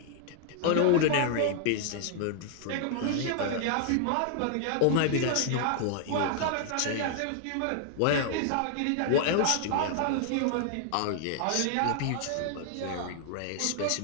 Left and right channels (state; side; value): different; both; correlation 0.00